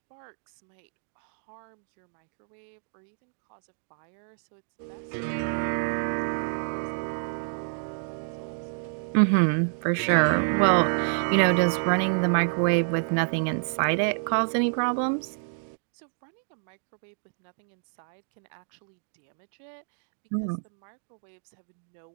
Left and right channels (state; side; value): silent; left; digital silence